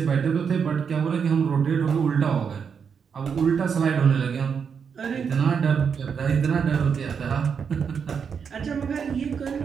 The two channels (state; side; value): quieter; left; 6.6 dB